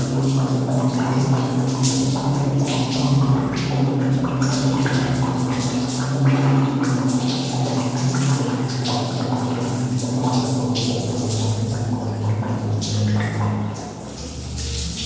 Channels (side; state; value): both; identical; correlation 1.00